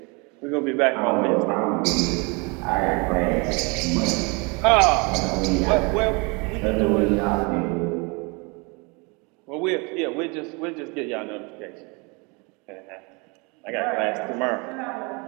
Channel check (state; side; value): quieter; left; 29.8 dB